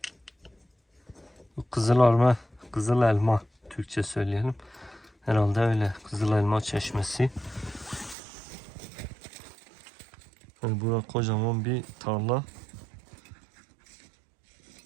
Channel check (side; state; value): left; drops out; at 8.2 s